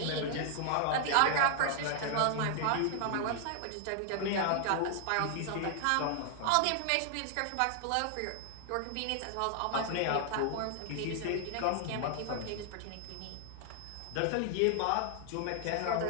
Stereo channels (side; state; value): both; different; correlation 0.00